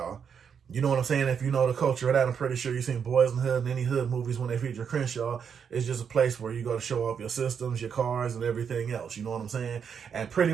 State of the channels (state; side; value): quieter; left; 7.1 dB